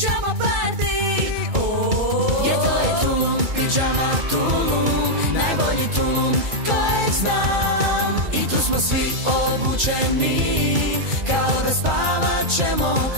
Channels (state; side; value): late; left; 2.3 ms